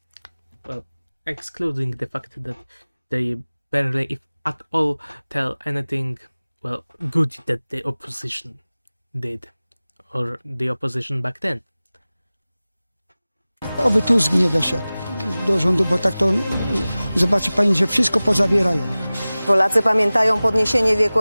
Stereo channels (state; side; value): inverted; both; correlation -0.98